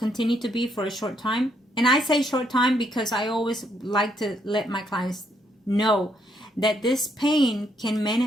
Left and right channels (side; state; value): both; normal; correlation 0.73